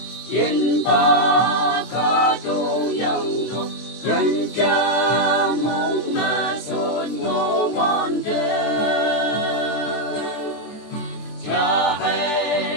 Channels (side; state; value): right; late; 24 ms